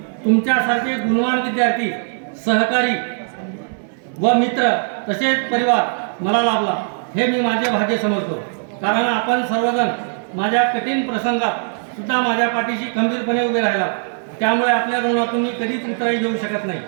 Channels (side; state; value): left; silent; digital silence